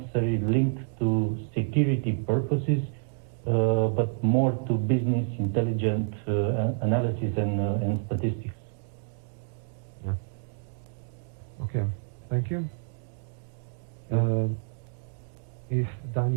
linked to security purposes, but more to business intelligent analysis and statistics. Yeah. Okay, thank you. If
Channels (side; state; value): left; silent; 59 dB below the other